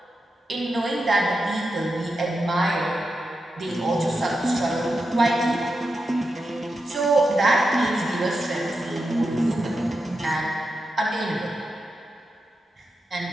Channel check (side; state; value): both; normal; correlation 0.88